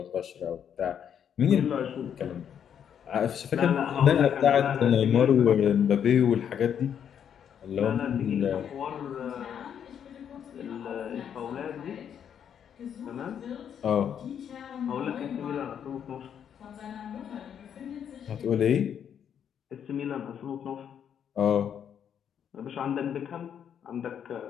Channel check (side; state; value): right; quieter; 8.6 dB